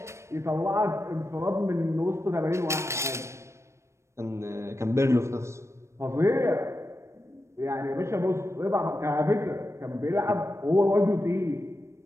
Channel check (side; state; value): left; late; 0.13 ms